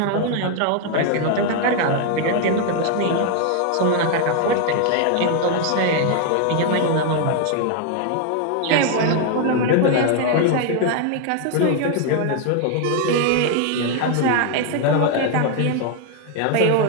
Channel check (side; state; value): both; different; correlation 0.00